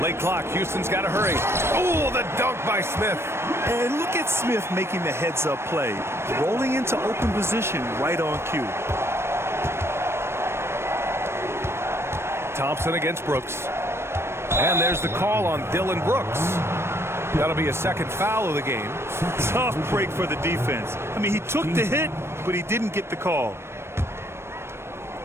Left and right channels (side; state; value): left; late; 0.12 ms